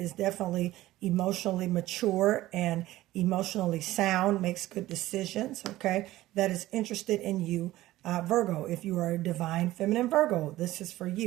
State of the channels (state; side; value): quieter; left; 16.1 dB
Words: definitely emotionally mature and emotionally sound, makes good decisions, okay? That is interested in you. Virgo, if you are a divine feminine Virgo, this is for